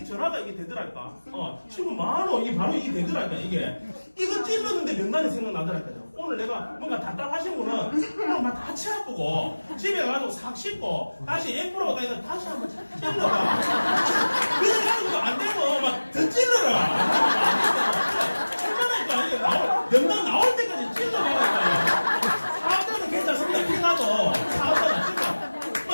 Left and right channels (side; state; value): both; inverted; correlation -1.00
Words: 전화가 이게 되더랄까. 친구 많어 이게 바로 이게 되더랄까. 이거 찔렀는데 명단이 생각나더랄까요. 오늘 내가 뭔가 답답하신 분은 오늘 막 다치 아프고 집에 가서 싹 씻고 다시 앰프라고 다니까 다시 한번 찔러봐. 그래가지고 안 되고 막 더 찔러라. 얼마나 이게 명단 나올 때까지 찔러봐라. 사업자는 괜찮습니다. 피나도 사업자는